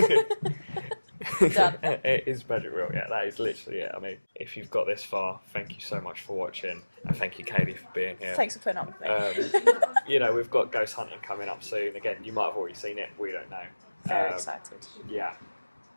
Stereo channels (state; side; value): inverted; both; correlation -1.00